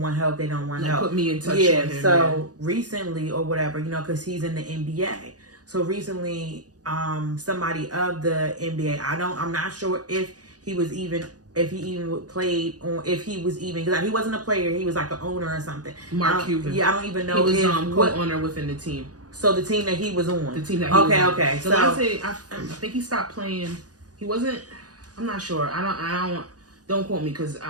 help, they don't want help. Put me in touch with him. So recently or whatever, because he's in the NBA. So recently, somebody of the NBA, I'm not sure if he was even played on, if he was even, because he wasn't a player, he was like an owner or something. Mark Cuban. Yeah, I don't even know. He was co-owner within the team. So the team that he was on. The team that he was on. Okay. So I think he stopped playing. He wasn't, I'm not sure. Don't quote me, because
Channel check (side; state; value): left; late; 0.68 ms